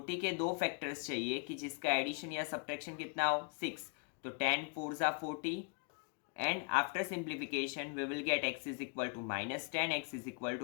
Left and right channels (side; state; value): right; quieter; 37.5 dB